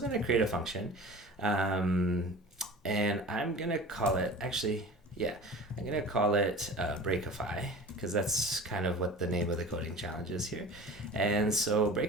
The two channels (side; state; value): both; normal; correlation 0.38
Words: going to create a function. And I'm going to call it, I'm going to call it Breakify, because that's kind of what the name of the coding challenge is here. And so